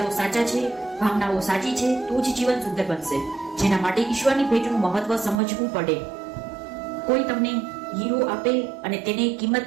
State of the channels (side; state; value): left; drops out; at 5.4 s